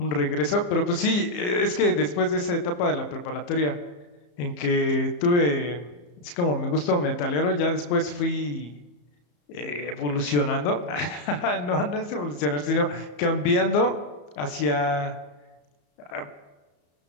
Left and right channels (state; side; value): late; right; 34 ms